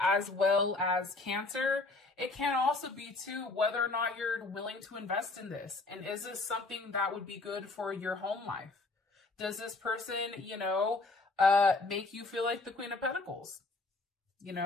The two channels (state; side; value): quieter; right; 3.4 dB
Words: well as Cancer. It can also be too whether or not you're willing to invest in this. And is this something that would be good for your home life? Does this person, you know, make you feel like the Queen of Pentacles? You